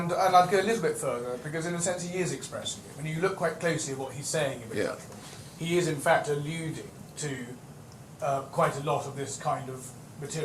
I'd go a little bit further, because in a sense he is expressing it. When you look quite closely at what he's saying in the judgment, he is in fact alluding to quite a lot of this kind of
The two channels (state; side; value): identical; both; correlation 1.00